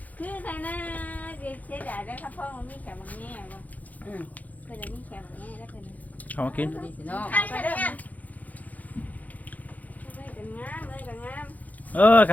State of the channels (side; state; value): right; late; 0.078 ms